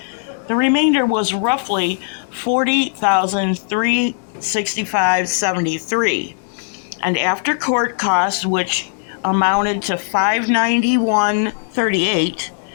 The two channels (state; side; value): silent; right; 67 dB below the other